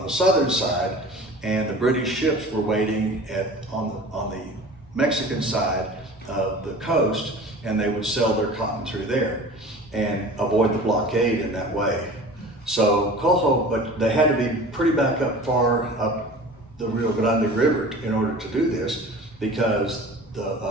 the southern side. And the British ships were waiting on the Mexican side of the coast, and they would sell their cotton through there and avoid the blockade in that way. So Coho, but they had to be pretty back up far up the Rio Grande River in order to do this, because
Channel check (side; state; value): both; normal; correlation 0.40